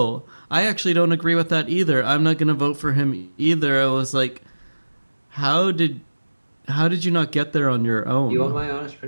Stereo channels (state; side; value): inverted; both; correlation -1.00